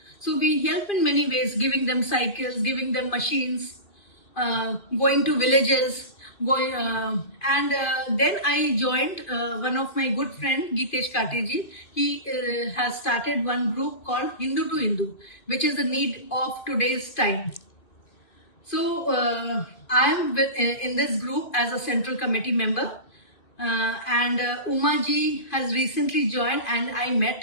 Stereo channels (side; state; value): right; late; 2.5 ms